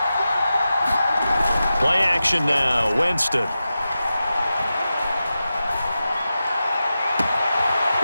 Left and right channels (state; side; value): inverted; both; correlation -0.92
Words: Play action now, Winston.